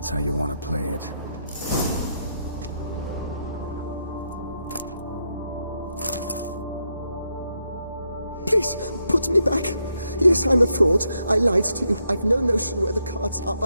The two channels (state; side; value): inverted; both; correlation -0.80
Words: how you want to play it. Please, put me back. Yes, I'm a fraud. I lied to you. I've no notion where the cards are,